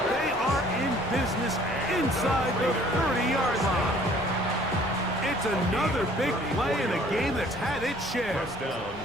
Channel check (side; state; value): left; noise; rumble, 20 dB below the sound